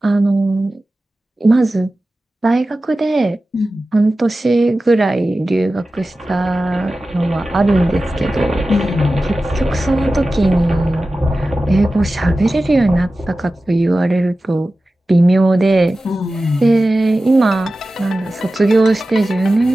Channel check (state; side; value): normal; both; correlation 0.95